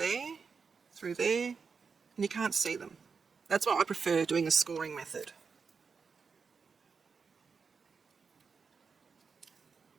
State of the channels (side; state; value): left; quieter; 5.4 dB